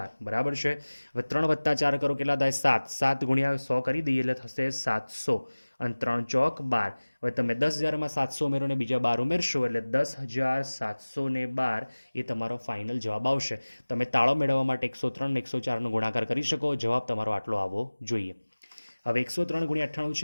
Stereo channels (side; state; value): both; inverted; correlation -1.00